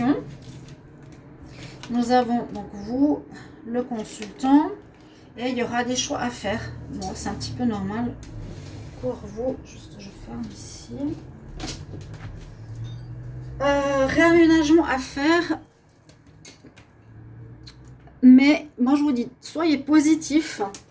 Nous avons donc vous, le consultant, et il y aura des choix à faire. Bon, c'est un petit peu normal pour vous. Juste, je ferme ici. Réaménagement à faire. Mais moi, je vous dis, soyez positif,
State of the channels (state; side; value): identical; both; correlation 1.00